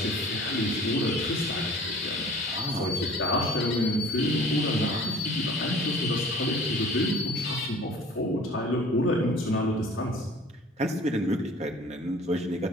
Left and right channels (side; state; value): both; normal; correlation 0.47